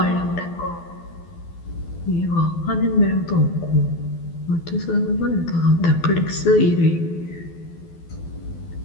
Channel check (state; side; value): late; right; 12 ms